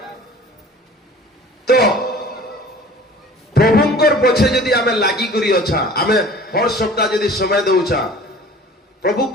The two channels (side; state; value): both; normal; correlation 0.45